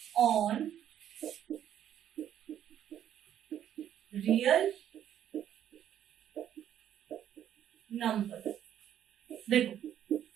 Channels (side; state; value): left; quieter; 10.4 dB